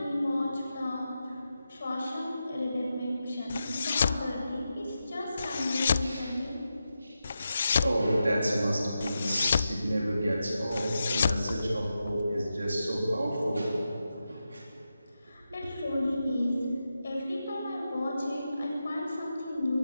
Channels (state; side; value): inverted; both; correlation -0.89